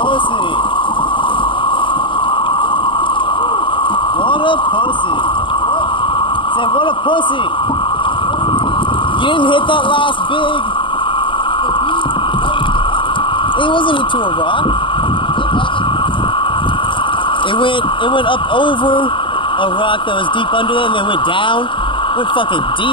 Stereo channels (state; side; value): late; right; 0.24 ms